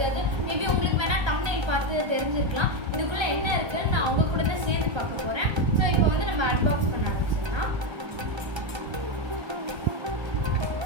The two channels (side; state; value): left; late; 1.3 ms